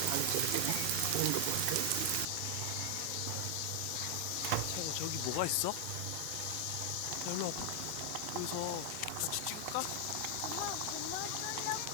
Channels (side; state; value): both; different; correlation 0.00